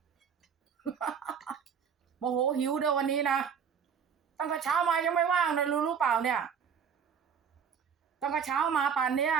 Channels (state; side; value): quieter; left; 7.1 dB